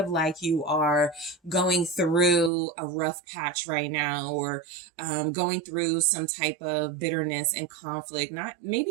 like you are going through a rough patch right now, or going through some type of bitterness and conflict.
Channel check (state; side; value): drops out; left; at 2.5 s